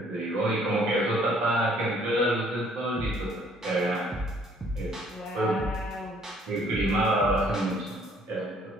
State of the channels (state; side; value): normal; both; correlation 0.61